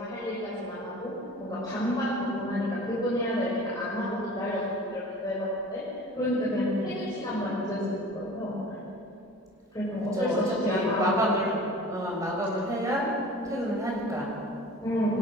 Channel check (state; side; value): normal; both; correlation 0.43